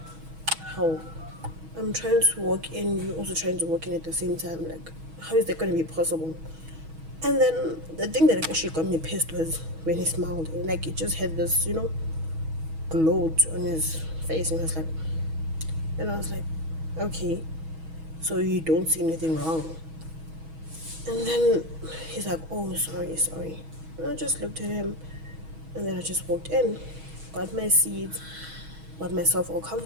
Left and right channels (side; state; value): left; late; 6.2 ms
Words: How? I'm trying to walk in, you're also trying to walk in at the same time. Like, how is that going to be possible? And then the thing that actually got me pissed was when he smiled. Like, he just had this, you know, glow on his face. And I was like, okay, so you don't see anything wrong. And then he's like, oh, sorry. And I just looked at him, and then I just walked in, got my seat, got myself all